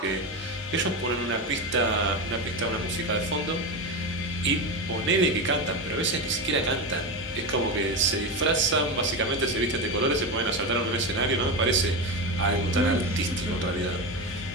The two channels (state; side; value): normal; both; correlation 0.17